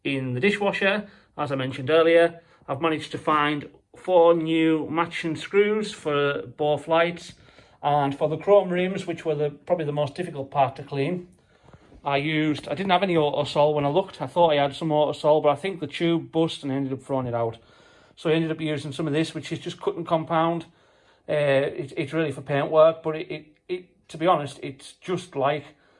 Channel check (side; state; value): both; identical; correlation 1.00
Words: in the dishwasher, as I mentioned earlier. I've managed to find 4 new matching screws for both lights, and for the chrome rims, which were probably the most difficult part to clean, I didn't have any Autosol when I looked. I thought I had some Autosol, but I think the tube bust and I ended up throwing it out. So I ended up using some of this, which is just cut and compound. It's really for paint work, but it to be honest, it's just like